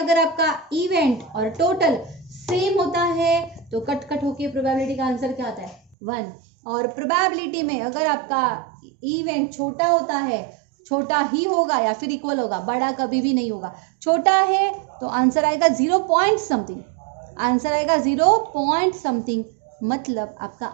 आपका इवेंट और टोटल सेम होता है तो कट कट होके प्रोबेबिलिटी का आंसर क्या आता है, 1। और प्रोबेबिलिटी में अगर आपका इवेंट छोटा होता है, छोटा ही होगा या फिर इक्वल होगा, बड़ा कभी भी नहीं होगा। छोटा है तो आंसर आएगा 0 पॉइंट समथिंग, आंसर आएगा 0 पॉइंट समथिंग। मतलब आपका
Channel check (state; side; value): drops out; left; at 6.0 s